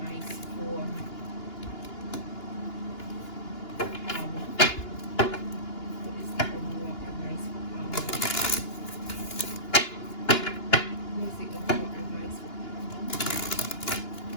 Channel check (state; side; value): late; right; 2.9 ms